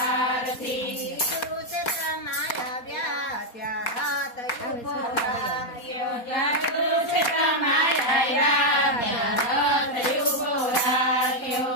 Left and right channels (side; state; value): right; late; 4.2 ms